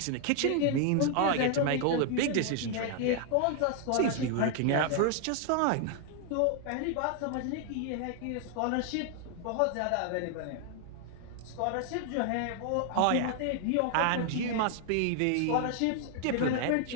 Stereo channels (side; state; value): both; different; correlation 0.00